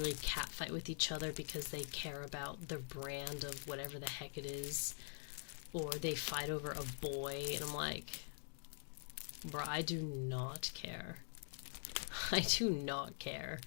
catfight with each other because they care about their brand of whatever the heck it is, or they fight over a boy, and I'm like, bro, I do not care. I do not care.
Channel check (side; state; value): right; silent; digital silence